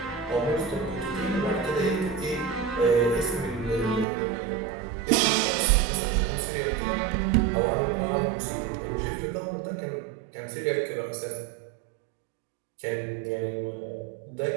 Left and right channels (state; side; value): drops out; left; at 4.0 s